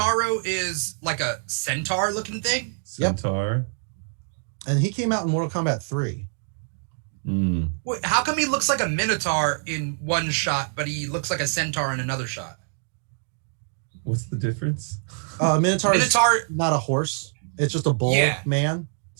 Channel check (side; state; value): left; silent; 58 dB below the other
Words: is like a centaur looking thing. Centaur. And he came out in Mortal Kombat 3. Wait, how come he looks like a minotaur in one shot, but he looks like a centaur in another shot? What's the difference? Minotaur is not a horse. It's just a bull man.